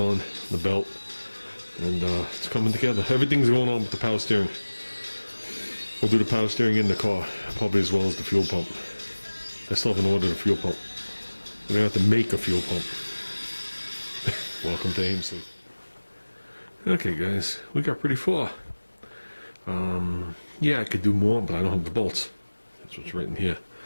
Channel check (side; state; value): both; inverted; correlation -1.00